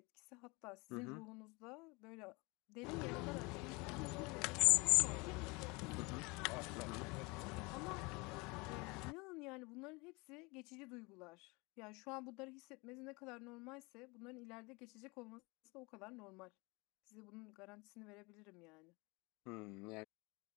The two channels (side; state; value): right; quieter; 26.6 dB